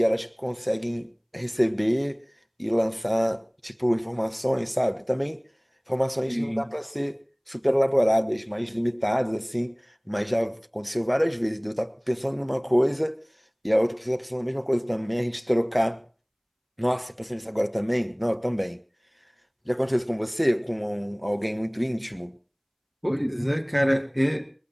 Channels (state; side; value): identical; both; correlation 1.00